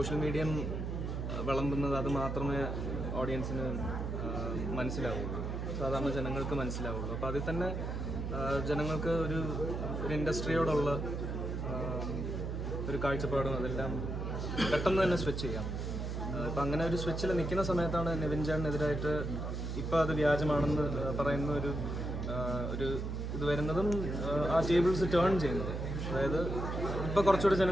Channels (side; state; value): right; noise; hum, 3 dB below the sound